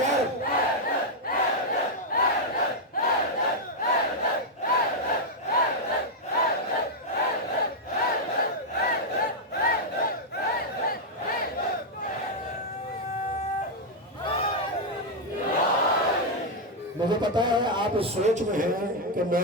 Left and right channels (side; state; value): both; normal; correlation -0.01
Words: مجھے پتا ہے آپ اس سوچ میں ہیں کہ